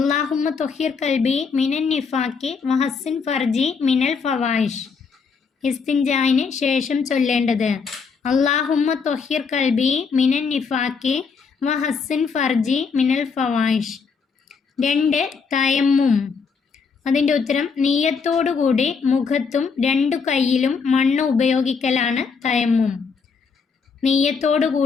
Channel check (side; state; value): right; quieter; 5.4 dB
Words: ത്വഹിർ കൽബി മിനൻ നിഫാക്കി വഹസ്സിൻ ഫർജി മിനൽ ഫവായിഷ്. ഇസ്തിൻജായിന് ശേഷം ചൊല്ലേണ്ടത് അല്ലാഹുമ്മ ത്വഹിർ കൽബി മിനൻ നിഫാക്കി വഹസ്സിൻ ഫർജി മിനൽ ഫവായിഷ്. 2. തയമ്മും. അതിൻ്റെ ഉത്തരം നിയ്യത്തോടുകൂടി മുഖത്തും 2 കൈയിലും മണ്ണ് ഉപയോഗിക്കലാണ് തയമ്മും.